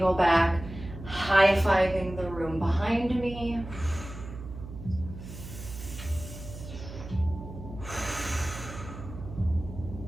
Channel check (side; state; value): right; noise; hum, 12 dB below the sound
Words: back, high-fiving the room behind me.